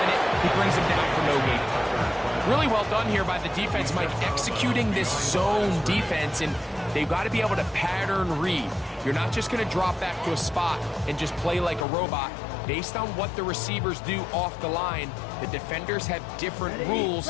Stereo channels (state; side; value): drops out; right; at 11.9 s